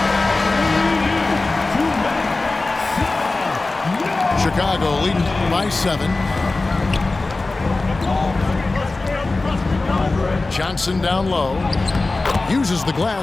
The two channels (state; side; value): quieter; right; 3.3 dB